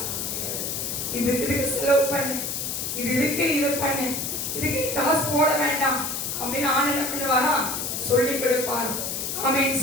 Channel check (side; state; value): left; noise; hiss, 3 dB below the sound